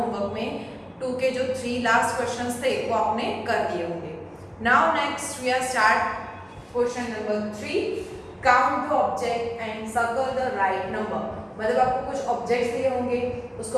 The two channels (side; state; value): both; identical; correlation 1.00